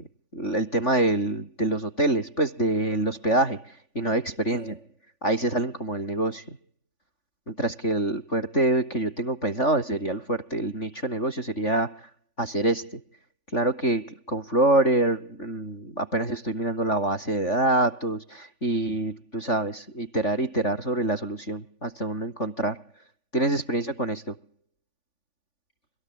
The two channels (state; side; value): late; right; 3.5 ms